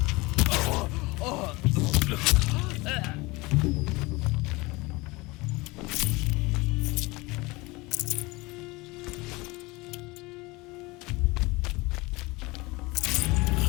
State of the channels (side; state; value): right; quieter; 23.4 dB